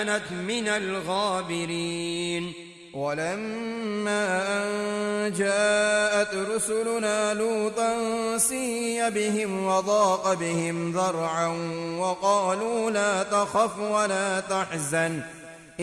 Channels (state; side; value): identical; both; correlation 1.00